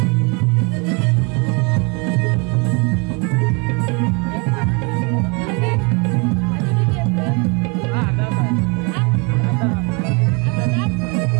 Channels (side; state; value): left; quieter; 31.8 dB